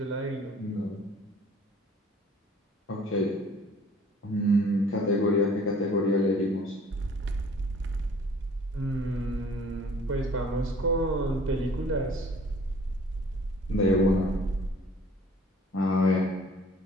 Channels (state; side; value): normal; both; correlation 0.52